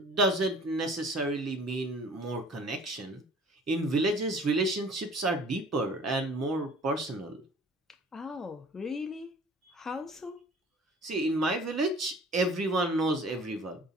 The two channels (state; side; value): normal; both; correlation 0.48